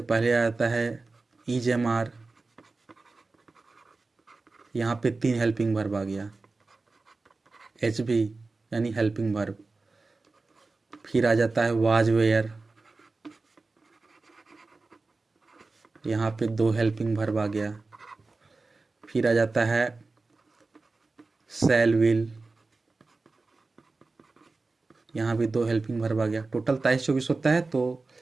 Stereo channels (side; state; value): left; quieter; 3.7 dB